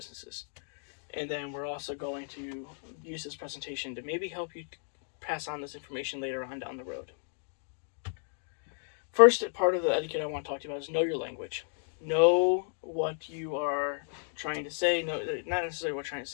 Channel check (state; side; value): silent; right; digital silence